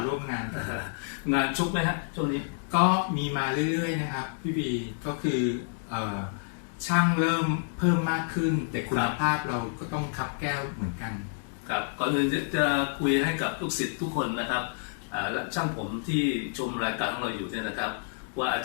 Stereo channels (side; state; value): right; silent; digital silence